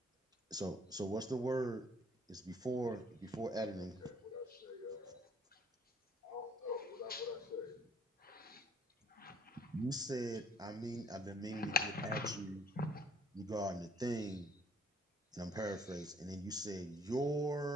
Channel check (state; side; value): normal; both; correlation 0.61